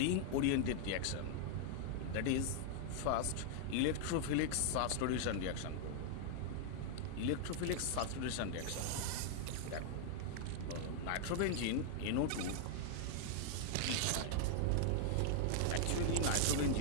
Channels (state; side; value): different; both; correlation -0.01